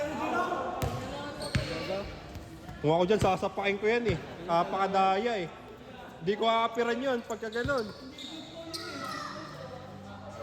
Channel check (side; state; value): both; identical; correlation 1.00